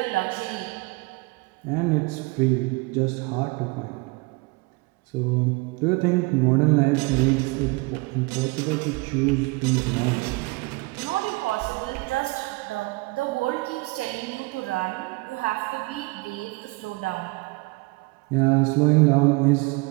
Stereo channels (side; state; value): left; quieter; 25.5 dB